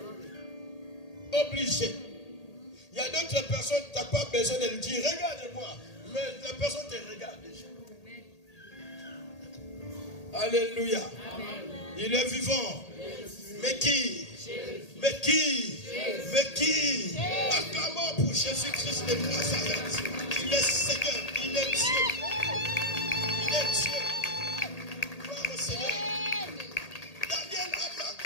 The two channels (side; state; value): right; late; 1.8 ms